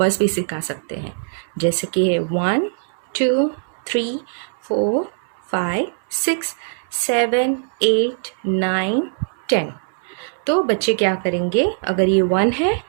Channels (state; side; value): silent; left; 65 dB below the other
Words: भी सिखा सकते हैं, जैसे कि 1 2 3 4 5 6 7 8 9 10। तो बच्चे क्या करेंगे, अगर ये 1 है